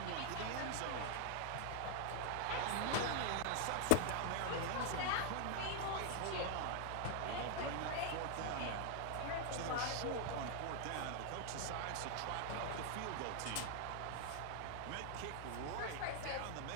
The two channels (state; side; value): different; both; correlation 0.00